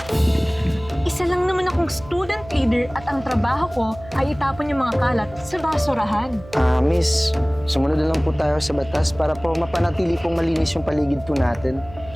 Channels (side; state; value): right; noise; hum, 19 dB below the sound